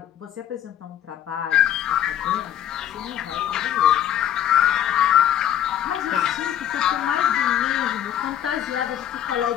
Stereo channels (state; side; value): quieter; right; 10.8 dB